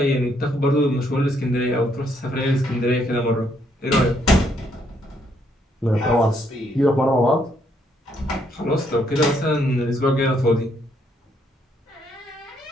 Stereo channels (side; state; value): both; normal; correlation 0.72